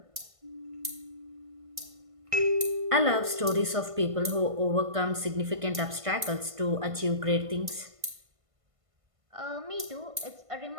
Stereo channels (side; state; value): left; late; 1.5 ms